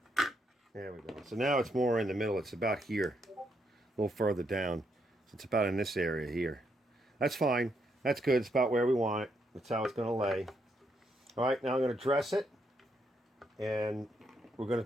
There we go. So now it's more in the middle. It's about here, a little further down. So it's about in this area here. That's fine. That's good. It's about where we want it. That's how it's going to lay. All right, now I'm going to dress it. And we're going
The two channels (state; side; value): normal; both; correlation 0.77